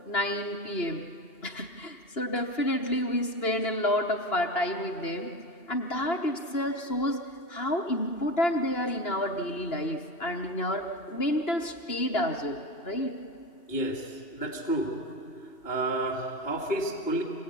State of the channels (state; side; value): late; right; 2.9 ms